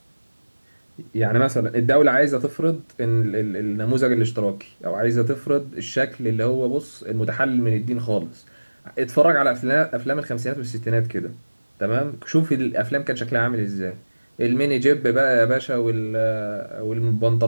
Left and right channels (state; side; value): inverted; both; correlation -1.00